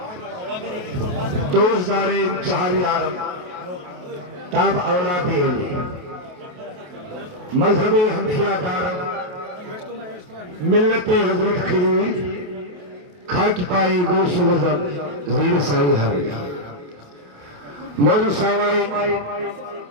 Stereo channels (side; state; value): left; late; 28 ms